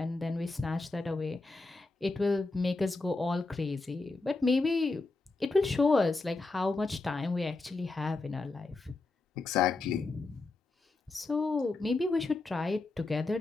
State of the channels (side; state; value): right; quieter; 3.5 dB